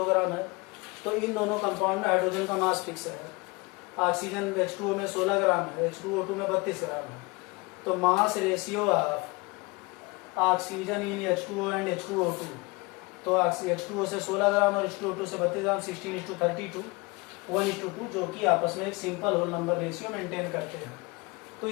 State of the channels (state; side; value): quieter; right; 26.2 dB